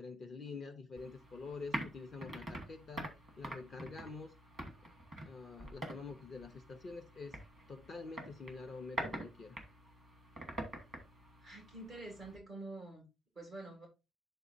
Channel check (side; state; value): both; normal; correlation 0.74